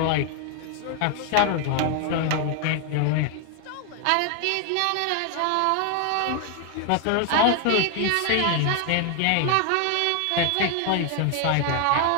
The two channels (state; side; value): different; both; correlation 0.00